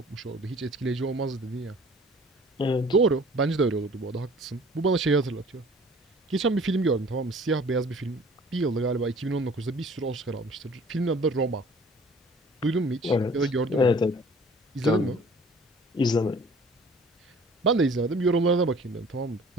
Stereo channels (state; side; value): normal; both; correlation 0.50